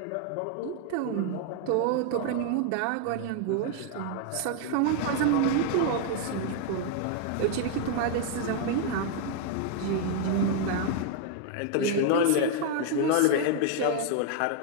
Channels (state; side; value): different; both; correlation 0.00